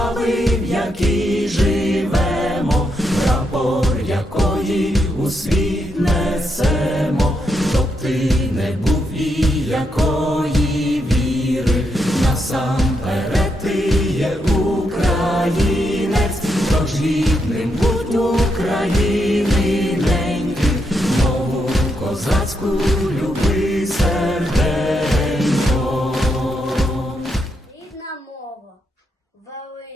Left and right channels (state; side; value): normal; both; correlation 0.80